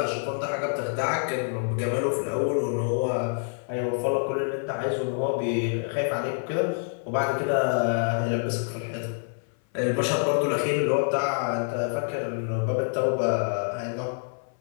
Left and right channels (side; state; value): right; silent; 57 dB below the other